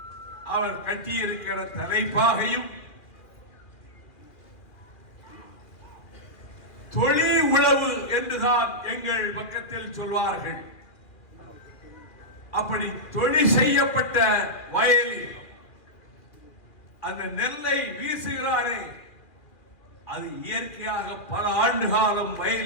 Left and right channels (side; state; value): right; late; 2.4 ms